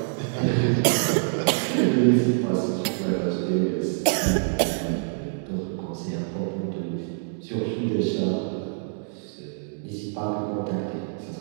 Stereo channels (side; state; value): left; silent; digital silence